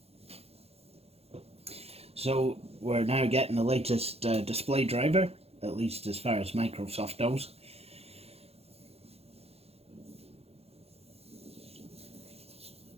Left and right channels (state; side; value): late; left; 0.29 ms